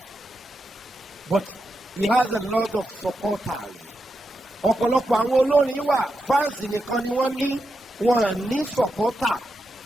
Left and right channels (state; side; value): normal; both; correlation 0.86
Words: but he has a lot of supporters. ọ̀pọ̀lọpọ̀ àwọn olórin wà fans nìkan ni wọ́n ní supporter.